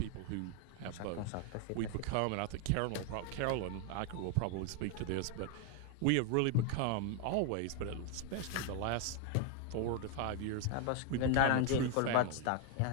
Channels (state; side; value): different; both; correlation 0.00